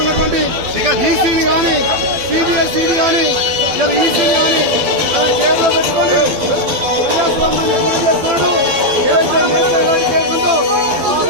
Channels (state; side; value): late; left; 12 ms